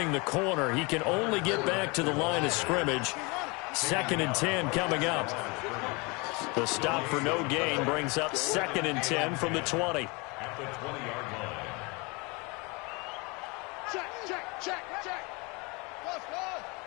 the corner. He can only get back to the line of scrimmage. 2nd and 10 coming up. The stop for no gain brings up 2nd and 10 from the 20. At the 20-yard line. Check. Go.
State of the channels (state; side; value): quieter; right; 28.1 dB